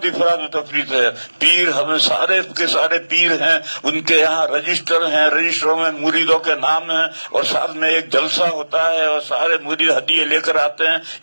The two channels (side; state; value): both; inverted; correlation -1.00